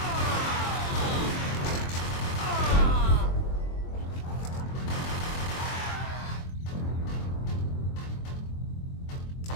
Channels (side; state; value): right; late; 23 ms